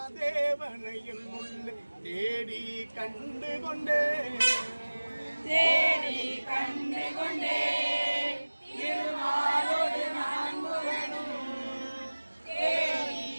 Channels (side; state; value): both; inverted; correlation -1.00